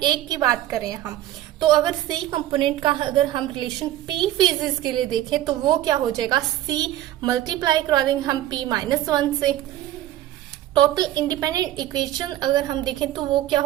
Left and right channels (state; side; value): quieter; left; 13.5 dB